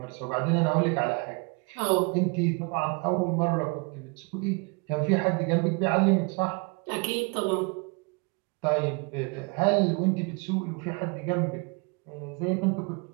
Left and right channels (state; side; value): quieter; left; 31.1 dB